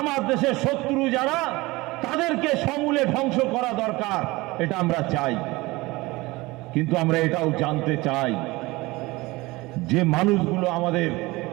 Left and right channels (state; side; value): quieter; left; 21.5 dB